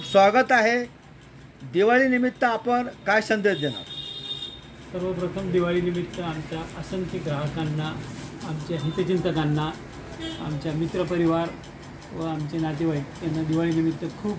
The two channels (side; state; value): both; identical; correlation 1.00